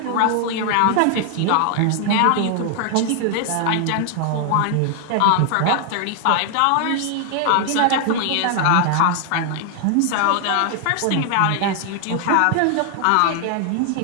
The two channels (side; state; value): both; different; correlation 0.00